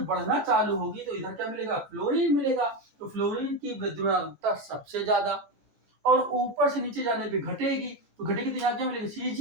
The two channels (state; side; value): late; left; 15 ms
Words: चालू होगी तो इधर क्या मिलेगा, फ्लोरीन मिलेगा। तो फ्लोरीन की विद्युत ऋणात्मकता सबसे ज्यादा। और ऊपर से नीचे जाने पे घटेगी, तो घटेगी तो यहाँ क्या मिलेगा,